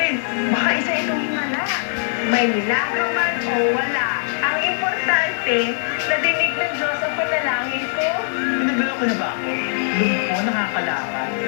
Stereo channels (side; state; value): right; silent; 65 dB below the other